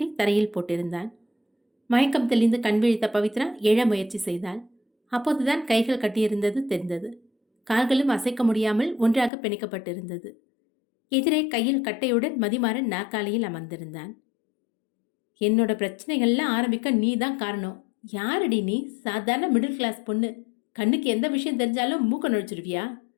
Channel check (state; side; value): drops out; right; at 9.3 s